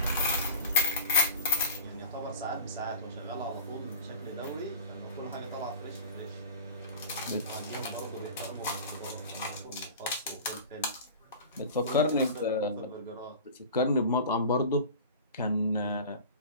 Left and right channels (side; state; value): both; inverted; correlation -0.34